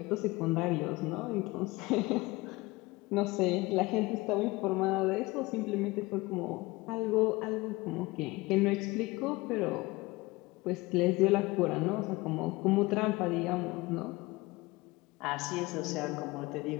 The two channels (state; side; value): quieter; right; 22.1 dB